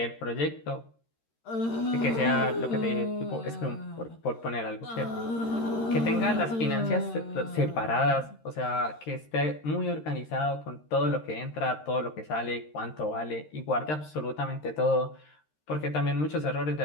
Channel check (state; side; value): late; right; 13 ms